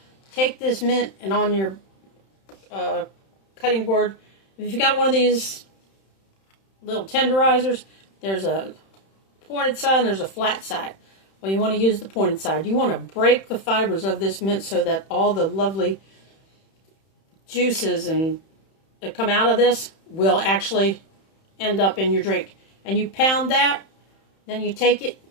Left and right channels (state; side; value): late; right; 31 ms